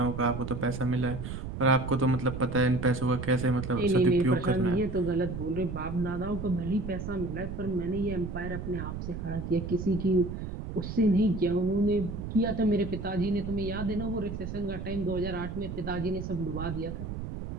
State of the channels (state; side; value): noise; right; rumble, 7 dB below the sound